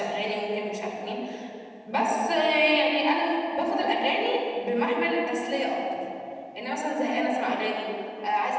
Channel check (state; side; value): identical; both; correlation 1.00